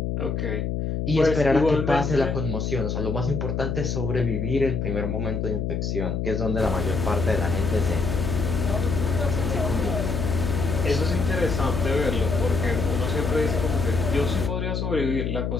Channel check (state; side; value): noise; left; hum, 1 dB below the sound